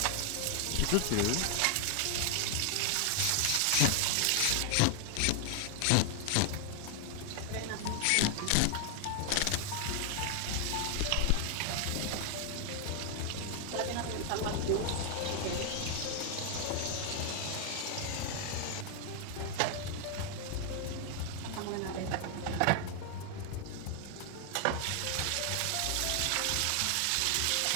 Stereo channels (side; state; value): both; different; correlation 0.00